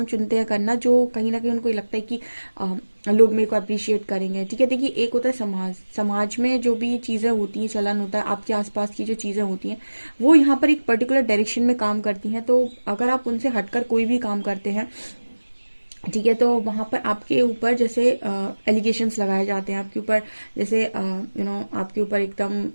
चुनते हैं करना जो कहीं ना कहीं उनको लगता है कि लोग मेरे को अप्रिशिएट करेंगे, ठीक है। देखिए एक होता है समाज में जो भी चीज़ें होती हैं, चलन होता है, आपके आसपास की जो चीज़ें होती हैं वो यहाँ पर एक पर्टिकुलर डायरेक्शन में काम करती हैं। तो अगर आप उनसे हटकर कोई भी काम करते हैं, ठीक है, तो वहाँ पर आपके ऊपर जैसे एलिगेशंस लगाए जाते हैं आपके ऊपर, जैसे आपके ऊपर एकदम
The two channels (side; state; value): both; inverted; correlation -1.00